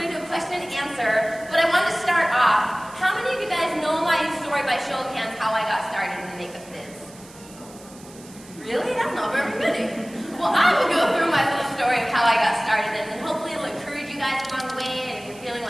going to do a question and answer, but I wanted to start off. How many of you guys know my story by show of hands, how I got started in the makeup biz? Really? That's not very many. Well, I will go through my little story of how I got started, and then hopefully it'll encourage you guys along the way, and if you're feeling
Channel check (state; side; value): noise; right; hiss, 21 dB below the sound